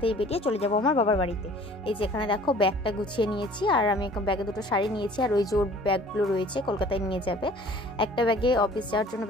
বেরিয়ে চলে যাব আমার বাবার বাড়িতে। এই যে এখানে দেখো ব্যাগটা গুছিয়ে নিয়েছি, আর আমি ব্যাগে দুটো শাড়ি নিয়েছি, আর ওই যে ওর ব্যাগগুলো রয়েছে কলকাতায় নিয়ে যাবে। একটা ব্যাগে অফিস যাওয়ার জন্য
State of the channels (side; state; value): both; normal; correlation 0.50